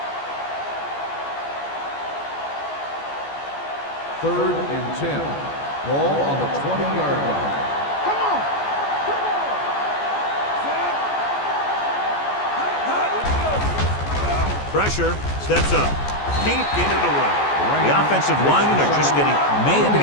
Third and 10. Ball on the 20-yard line. Come on. Pressure. Steps up. Can't get it away. The offensive linemen are just getting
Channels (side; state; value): right; late; 14 ms